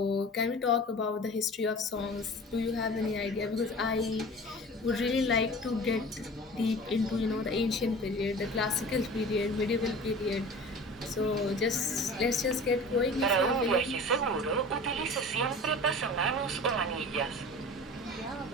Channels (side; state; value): both; normal; correlation 0.39